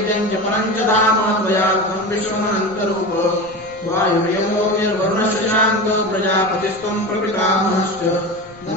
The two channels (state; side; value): noise; left; rumble, 25 dB below the sound